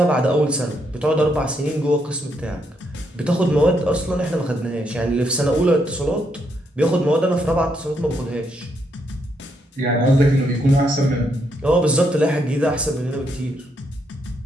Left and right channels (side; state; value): both; normal; correlation 0.77